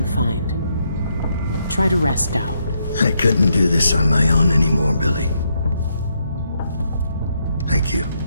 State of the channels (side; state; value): both; inverted; correlation -0.77